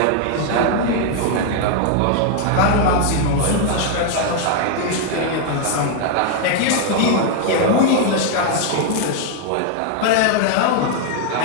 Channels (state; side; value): different; both; correlation 0.00